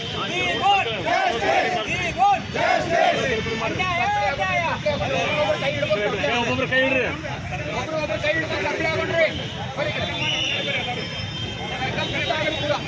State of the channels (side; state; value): both; identical; correlation 1.00